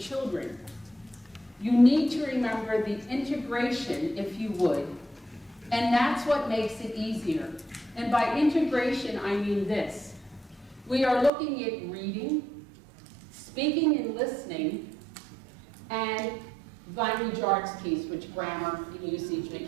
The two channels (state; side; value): drops out; left; at 11.3 s